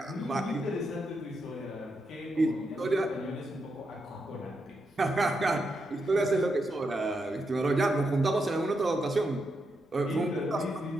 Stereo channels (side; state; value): both; normal; correlation 0.83